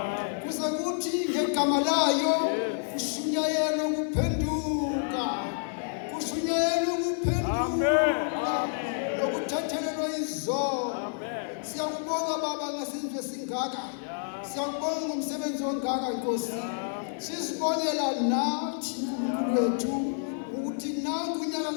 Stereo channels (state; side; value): silent; right; 59 dB below the other